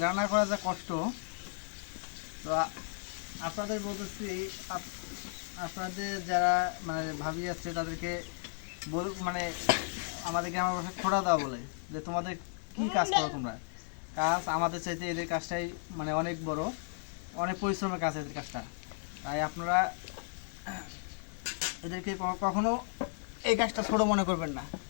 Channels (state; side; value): silent; right; 55 dB below the other